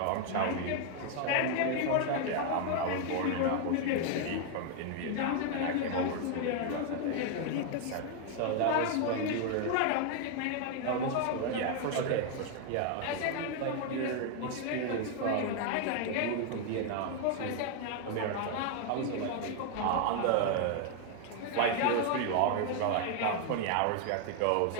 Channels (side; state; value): both; different; correlation 0.00